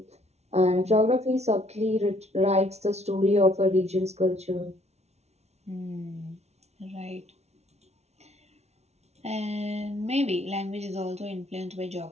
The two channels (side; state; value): left; late; 0.31 ms